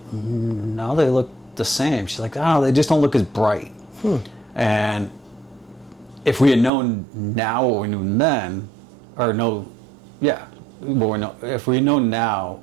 no, they look the same. She's like, oh, they just don't look as bright. And if we had known now what we knew then, or no, yeah, if we had known now,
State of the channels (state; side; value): drops out; left; at 6.7 s